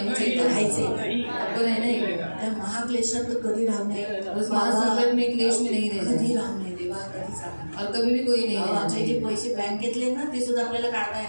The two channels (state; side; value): inverted; both; correlation -1.00